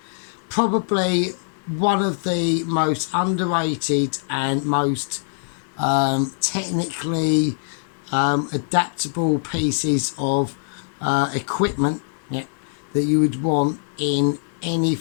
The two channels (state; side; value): silent; right; 58 dB below the other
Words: probably one of the most underrated and most technically adaptable pieces of equipment, yeah, that you would want in any